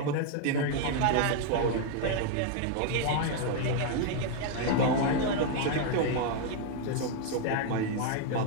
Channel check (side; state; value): both; different; correlation 0.00